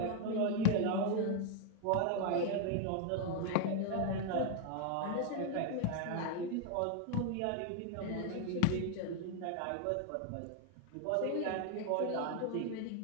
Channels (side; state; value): both; different; correlation 0.00